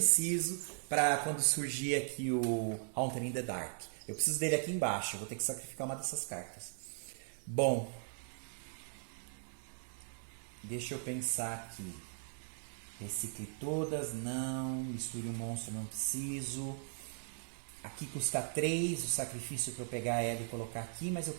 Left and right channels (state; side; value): silent; left; digital silence